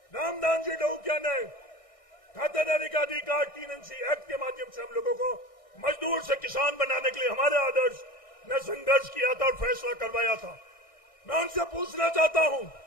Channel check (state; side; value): late; right; 1.6 ms